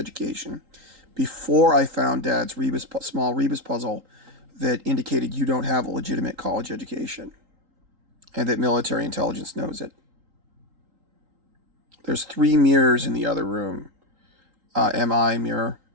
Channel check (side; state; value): left; late; 3.8 ms